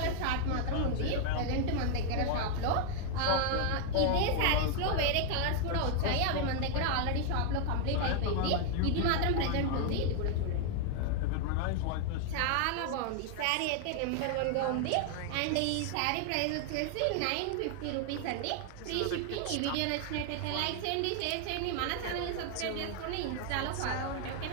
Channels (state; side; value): different; both; correlation 0.00